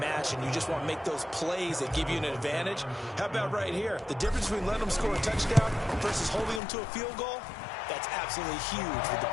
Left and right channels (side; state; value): right; drops out; at 6.6 s